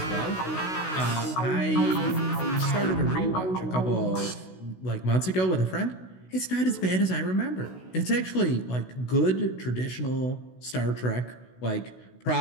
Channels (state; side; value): late; right; 16 ms